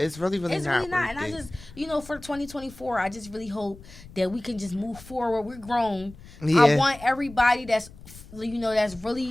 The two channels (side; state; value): left; noise; rumble, 19 dB below the sound